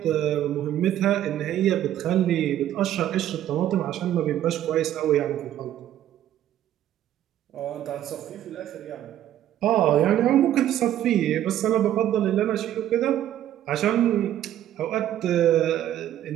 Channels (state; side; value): quieter; left; 11.9 dB